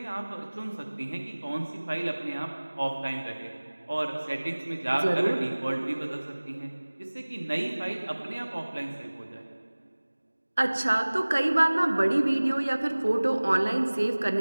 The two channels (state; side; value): inverted; both; correlation -1.00